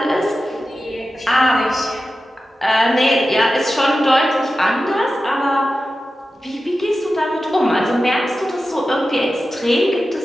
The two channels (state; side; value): normal; both; correlation 0.93